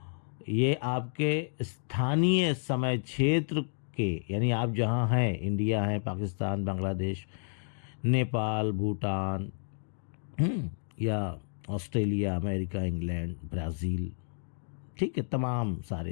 ये आपके स्थानीय समय क्षेत्र के, यानी आप जहाँ हैं, इंडिया है, पाकिस्तान, बांग्लादेश, नेपाल, भूटान, या ऑस्ट्रेलिया, अमेरिका, इंग्लैंड, ब्राज़ील, ठीक है, तमाम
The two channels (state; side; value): silent; right; digital silence